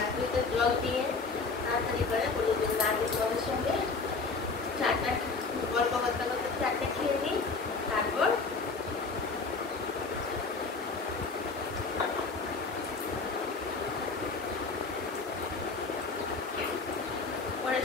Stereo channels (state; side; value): quieter; right; 4.2 dB